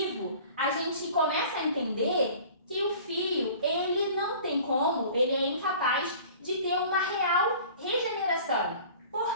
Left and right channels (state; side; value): inverted; both; correlation -0.46